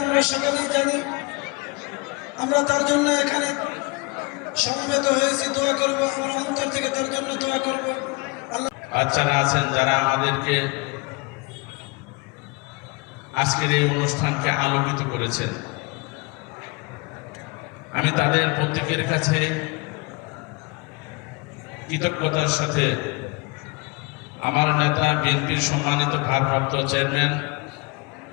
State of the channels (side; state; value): right; quieter; 27.4 dB